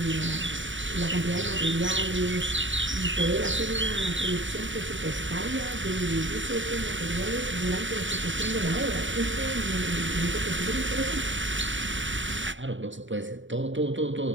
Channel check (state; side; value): late; left; 0.55 ms